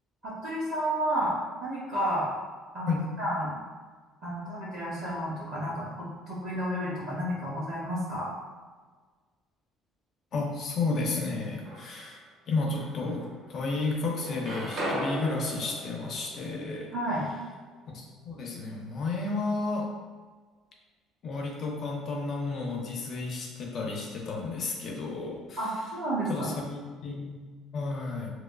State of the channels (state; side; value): normal; both; correlation 0.56